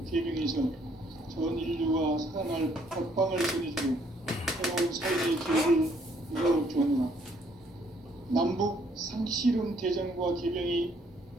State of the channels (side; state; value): both; normal; correlation 0.66